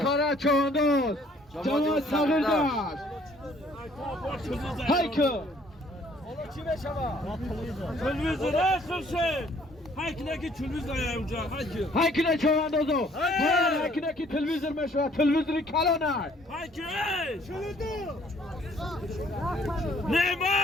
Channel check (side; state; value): both; normal; correlation 0.60